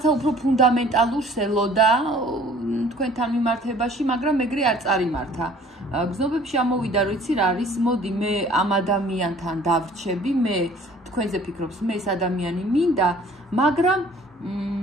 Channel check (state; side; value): normal; both; correlation 0.53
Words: უფრო ფუნდამენტალურს ელოდა თქვენთან მიმართებაში, მაგრამ ეგრე არ წარიმართა. გრძნობებში ამოვიდა, რომ იცი რა არის, მოდი მე ამ ადამიანთან დავრჩები, მე თქვენზე ფიქრობს, მე ეს ადამიანი მინდა, მაგრამ